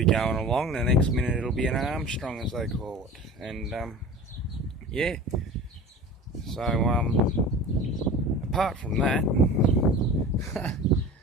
going along, the next minute it'll be an Armstrong, as they call it. And yeah, so apart from that,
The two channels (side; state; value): both; normal; correlation 0.37